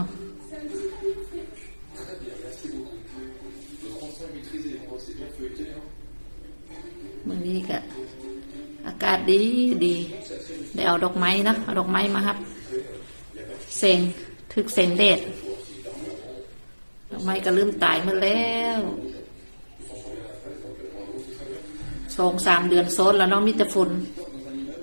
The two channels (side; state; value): both; inverted; correlation -1.00